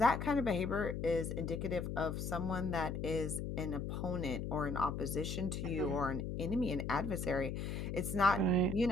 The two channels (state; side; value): noise; left; hum, 4 dB below the sound